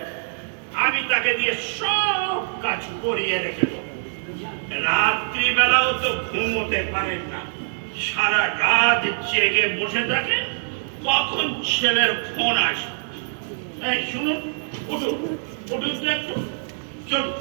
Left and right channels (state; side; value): silent; left; digital silence